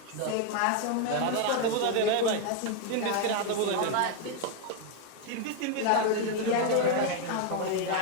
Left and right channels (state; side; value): different; both; correlation 0.01